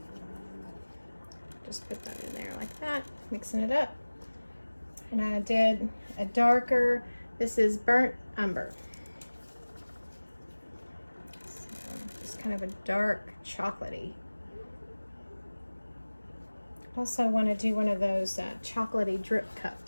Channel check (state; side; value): inverted; both; correlation -1.00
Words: just put that in there like that, mixing it up. And I did a darker, this is burnt umber. So just kind of a dark chocolatey. Also want to do one of those chocolatey drip